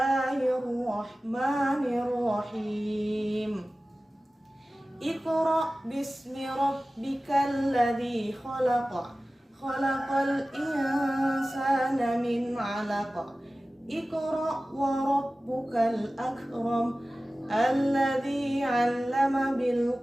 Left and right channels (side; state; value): both; normal; correlation 0.96